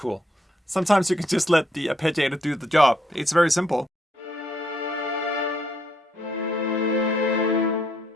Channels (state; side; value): normal; both; correlation 0.73